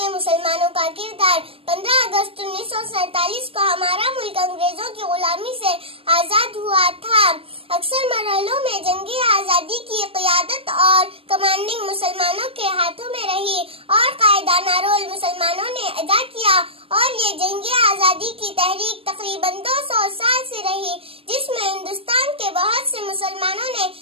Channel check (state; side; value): late; left; 0.27 ms